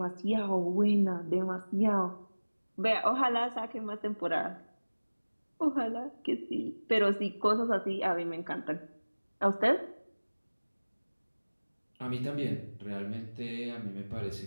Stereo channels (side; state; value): both; inverted; correlation -1.00